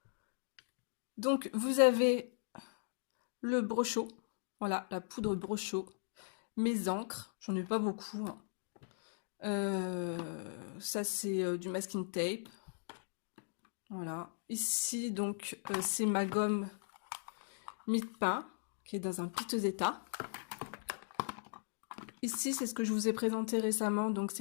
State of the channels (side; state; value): right; silent; digital silence